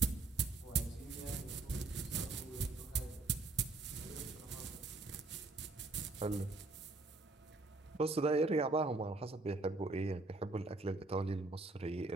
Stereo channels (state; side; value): quieter; left; 3.3 dB